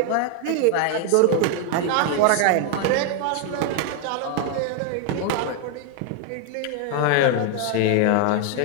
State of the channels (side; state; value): both; different; correlation 0.00